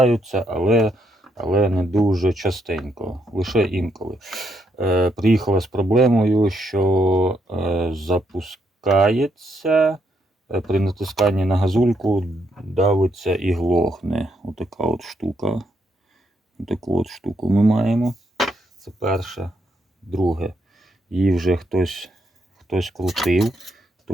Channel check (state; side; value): normal; both; correlation 0.77